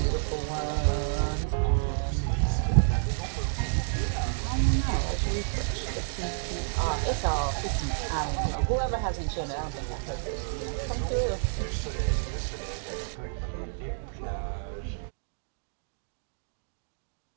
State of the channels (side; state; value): left; silent; digital silence